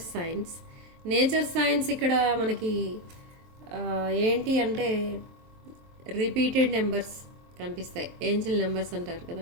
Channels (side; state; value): left; late; 23 ms